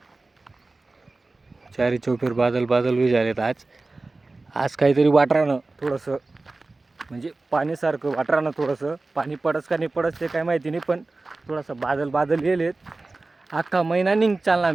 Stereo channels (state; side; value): quieter; left; 3.3 dB